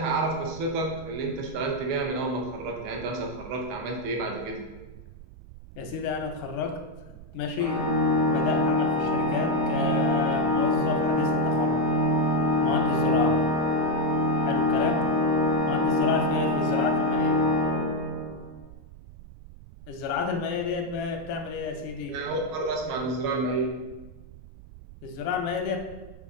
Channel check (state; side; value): noise; right; rumble, 18 dB below the sound